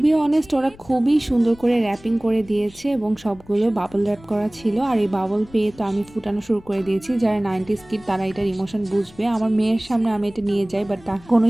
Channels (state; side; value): noise; left; rumble, 24 dB below the sound